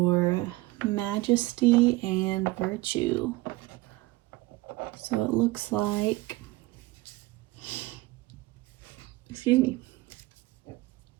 majesty and virtue. So it looks like, excuse me,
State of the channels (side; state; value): left; quieter; 20.3 dB